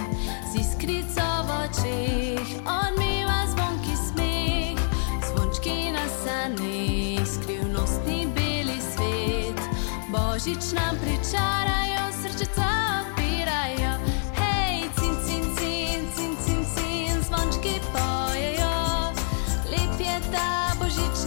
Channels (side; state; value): right; silent; 61 dB below the other